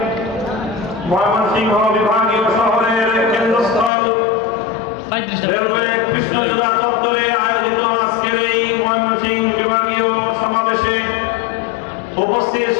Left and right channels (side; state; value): right; drops out; at 3.9 s